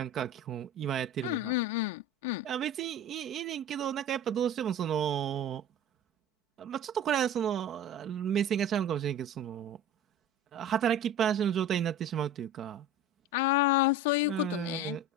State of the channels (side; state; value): both; normal; correlation 0.36